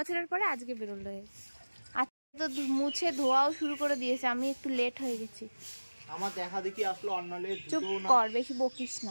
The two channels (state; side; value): inverted; both; correlation -1.00